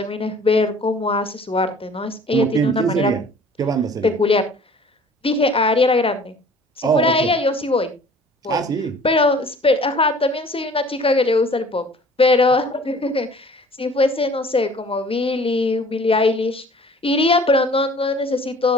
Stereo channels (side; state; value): both; normal; correlation 0.50